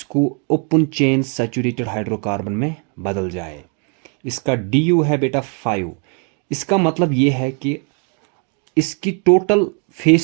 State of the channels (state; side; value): quieter; left; 39.2 dB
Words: ओपन चेन सैचुरेटेड हाइड्रोकार्बन में बदल जाए। इसका du है बेटा 5। इसका मतलब ये है कि इसकी टोटल